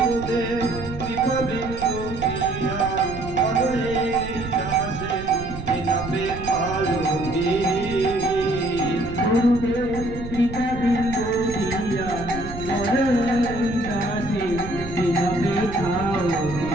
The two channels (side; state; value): right; noise; rumble, 10 dB below the sound